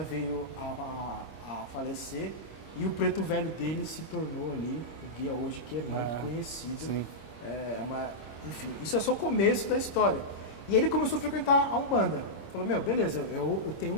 veio a a falecer. E o preto velho dele se tornou ali o guia hoje, que é muito conhecido. Sim. Enfim, isso é só o começo da história. E ele começou a frequentar a Umbanda. Falou, beleza, eu tenho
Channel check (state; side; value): late; right; 26 ms